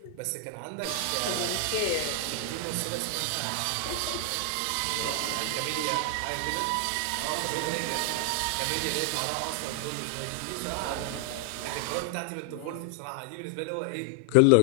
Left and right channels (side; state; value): both; different; correlation 0.00